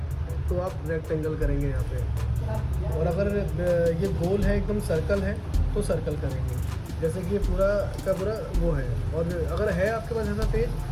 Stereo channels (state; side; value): identical; both; correlation 1.00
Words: तो आप रेक्टेंगल करेंगे यहाँ पे, और अगर ये गोल है एकदम सर्कल है तो सर्कल करेंगे, जैसे कि ये पूरा का पूरा वो है। और अगर है आपके पास ऐसा पेज